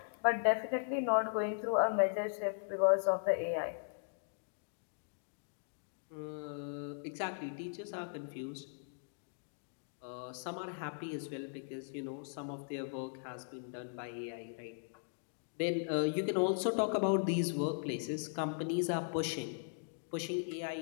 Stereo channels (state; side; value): silent; right; digital silence